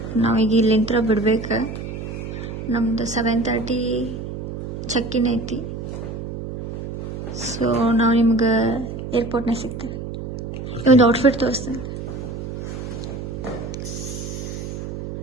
ನಾವೀಗ ಇಲ್ಲಿಂದ ಬಿಡ್ಬೇಕು. ನಮ್ದು 7:30 ಚೆಕ್-ಇನ್ ಐತಿ. ಸೊ ನಾವು ನಿಮ್ಗೆ ಏರ್ಪೋರ್ಟ್ನಾಗ ಸಿಗ್ತೇವೆ. ಒಂದು ಔಟ್ಫಿಟ್ ತೋರಿಸ್ತೇನೆ.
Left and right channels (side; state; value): right; noise; hum, 7 dB below the sound